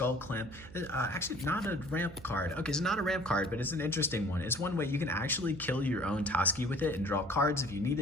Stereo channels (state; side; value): noise; right; hum, 17 dB below the sound